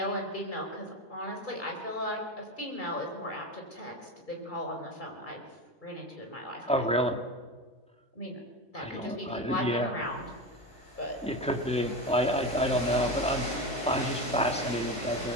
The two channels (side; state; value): both; normal; correlation 0.22